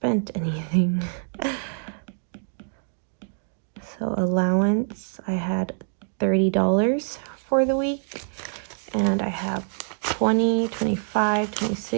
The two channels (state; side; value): silent; left; digital silence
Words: anything. So allowance, I had $30 for the week, and I have 20, 25,